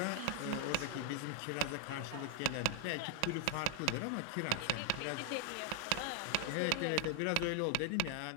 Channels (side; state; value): both; different; correlation 0.00